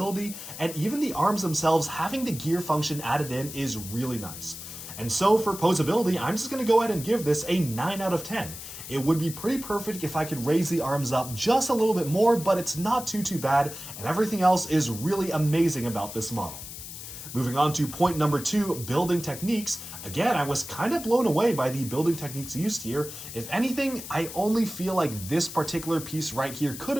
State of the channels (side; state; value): left; noise; hiss, 11 dB below the sound